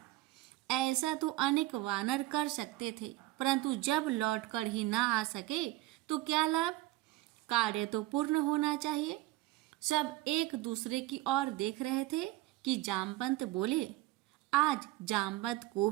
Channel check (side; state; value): left; quieter; 17.6 dB